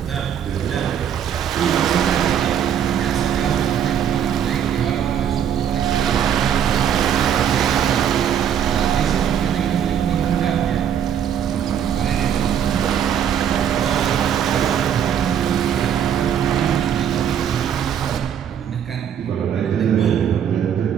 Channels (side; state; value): left; quieter; 8.9 dB